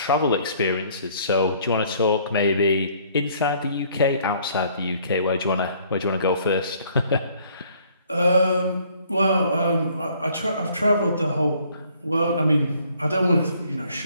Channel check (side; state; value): both; inverted; correlation -0.61